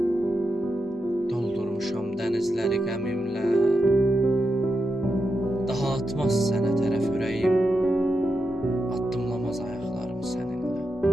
Doldurmuşam dənizləri qəmimlə. Daha atmaz sənə tərəf ürəyim. Addımlamaz ayaqlarım səninlə.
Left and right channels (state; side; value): normal; both; correlation 0.87